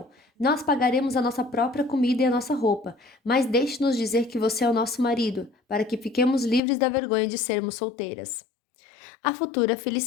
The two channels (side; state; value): right; drops out; at 6.6 s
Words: Nós pagaremos a nossa própria comida e a nossa roupa, mas deixe-nos dizer que você é o nosso marido, para que fiquemos livres da vergonha de sermos solteiras. A futura